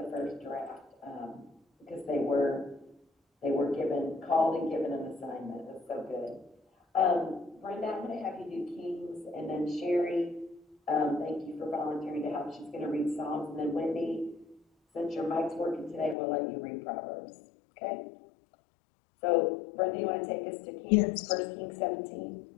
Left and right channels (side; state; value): right; drops out; at 16.2 s